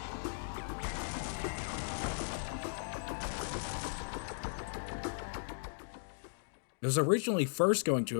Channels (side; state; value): right; silent; digital silence